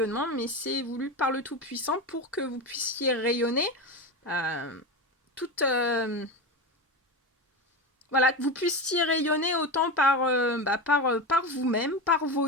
mais c'est voulu par le Tout-Puissant pour que vous puissiez rayonner toute... voilà, que vous puissiez rayonner autant par vous-même, par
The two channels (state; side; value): normal; both; correlation 0.21